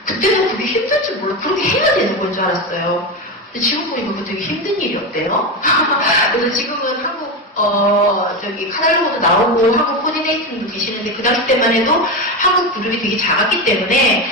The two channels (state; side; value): normal; both; correlation 0.16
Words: 그때는 그게 힘들 줄 몰라. 그렇게 해야 되는 건 줄 알았어요. 근데 지금 보니까 그거 되게 힘든 일이었대요. 그래서 지금은 한국 저기 카달로그도 나오고 한국 코디네이팅도 계시는데 그 당시 때만 해도 한국 그룹이 되게 작았기 때문에